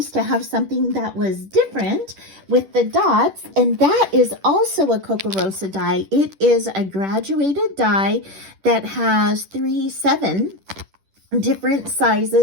to have something that was different with the dots. And that is also a KOKOROSA die. It is a graduated die that has 7 different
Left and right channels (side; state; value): left; late; 10 ms